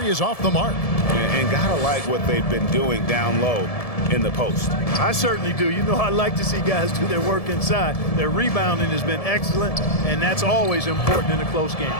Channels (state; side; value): late; right; 1.7 ms